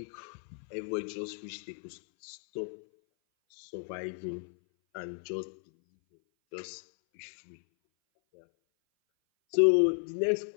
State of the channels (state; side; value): silent; right; 56 dB below the other